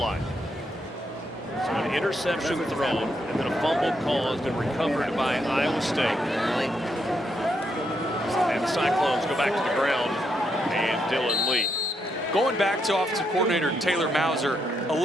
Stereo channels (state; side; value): normal; both; correlation 0.78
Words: So an interception thrown and then a fumble caused and recovered by Iowa State. And the Cyclones go back to the ground and Dylan Lee. Going back to offensive coordinator Taylor Mauser,